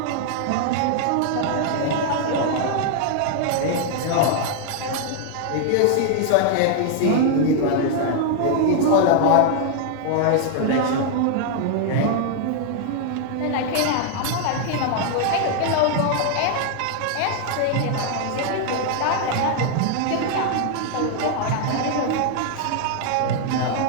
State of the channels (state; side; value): different; both; correlation 0.00